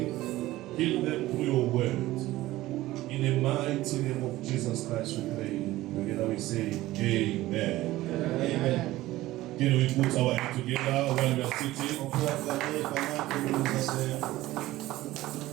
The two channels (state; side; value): quieter; left; 16.8 dB